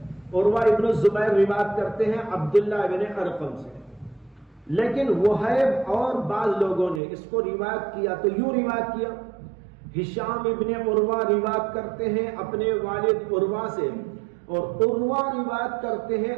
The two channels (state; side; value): drops out; left; at 7.0 s